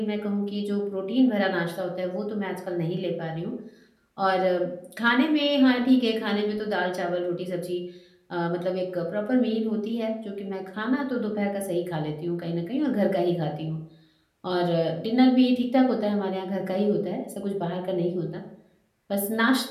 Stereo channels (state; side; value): identical; both; correlation 1.00